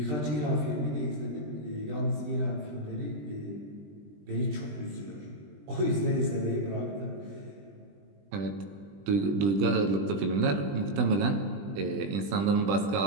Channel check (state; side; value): late; left; 20 ms